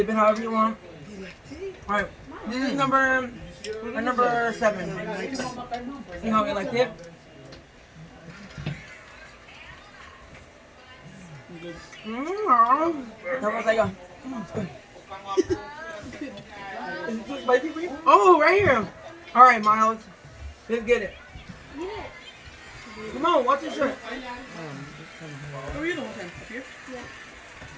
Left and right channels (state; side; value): identical; both; correlation 1.00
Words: it however you want. All right. This is number 7. See how we like it? That was like a. It's good. Is it too spicy for you? Oh, right here. All right, Miles. Let's get it. Come on, watch your shirt. Where are you the whole time? Up here?